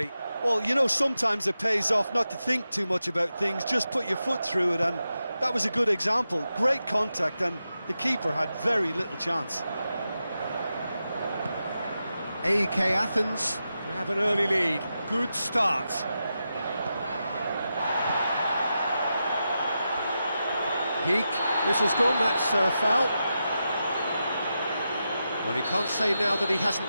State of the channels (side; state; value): both; inverted; correlation -0.89